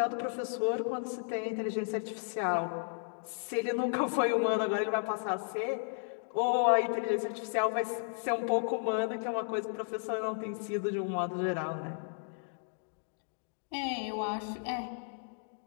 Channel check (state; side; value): silent; right; digital silence